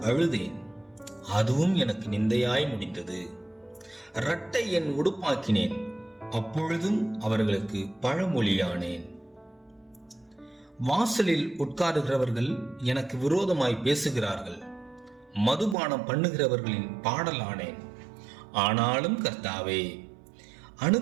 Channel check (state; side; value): drops out; left; at 15.8 s